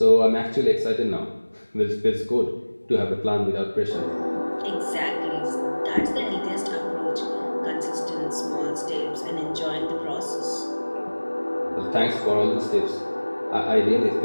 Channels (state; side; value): inverted; both; correlation -1.00